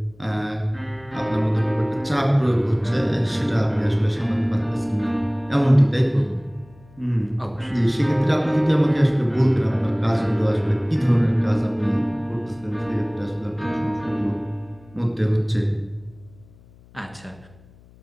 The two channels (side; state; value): left; noise; hum, 26 dB below the sound